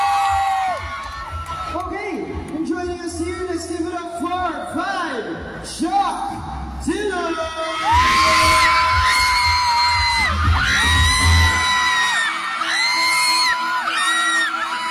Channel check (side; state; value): both; identical; correlation 1.00